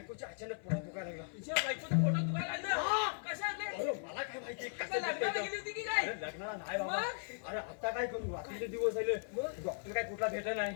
अचानक पोटात दुखायला लागला. तुझ्या बायकोचं फोटो दुखायला लागलं कशात रे? अरे मला काय माहिती काय लग्नाला गेली होती की काय? अरे लग्नाला नाही बाबा. मग? अरे आता काय करू रात्रीचे दिवस झाले. मग? डॉक्टर काय कुठला भेटला नाही.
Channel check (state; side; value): silent; right; 53 dB below the other